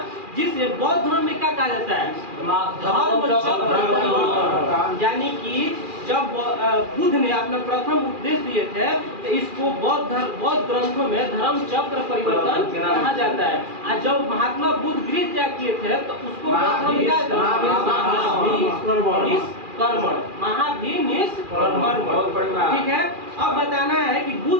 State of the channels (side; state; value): left; late; 2.4 ms